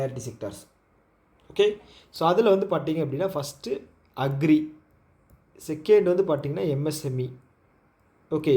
செக்டார்ஸ். ஓகே, ஸோ அதில் வந்து பார்த்திங்க அப்படின்னா ஃபஸ்ட்டு அக்ரி, செகண்ட் வந்து பார்த்திங்கன்னா எம்எஸ்எம்இ. ஓகே,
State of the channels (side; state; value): both; identical; correlation 1.00